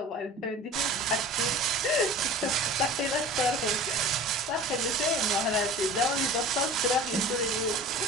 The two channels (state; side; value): normal; both; correlation 0.40